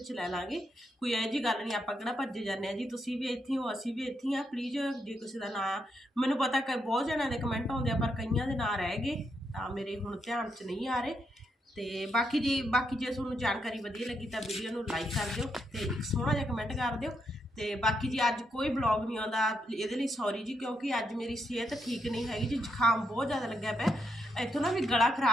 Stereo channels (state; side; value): normal; both; correlation 0.80